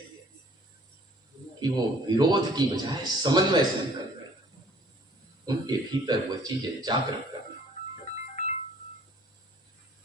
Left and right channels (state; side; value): normal; both; correlation 0.55